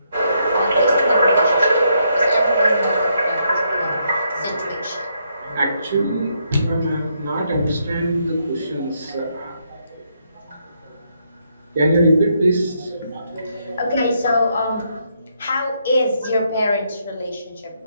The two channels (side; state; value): both; inverted; correlation -0.76